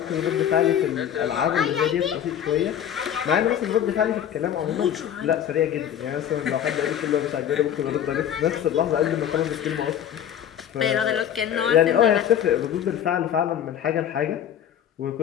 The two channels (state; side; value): quieter; right; 9.8 dB